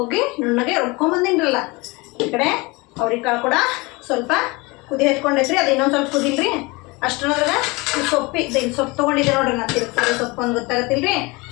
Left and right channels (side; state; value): right; quieter; 25.0 dB